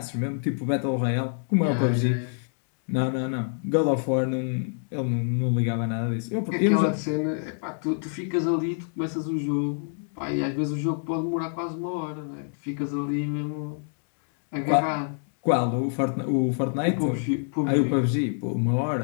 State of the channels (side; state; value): right; silent; 60 dB below the other